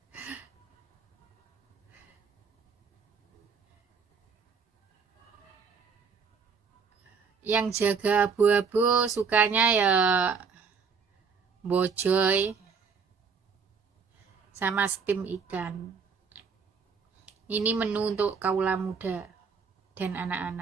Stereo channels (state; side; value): quieter; left; 5.7 dB